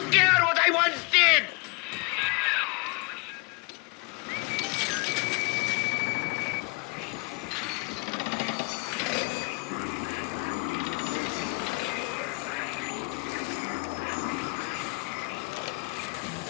care what I once did.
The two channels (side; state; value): right; quieter; 30.2 dB